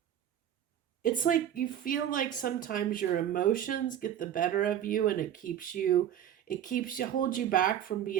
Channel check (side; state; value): left; quieter; 10.3 dB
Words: you feel like sometimes your emotions get the better of you, and it holds you back from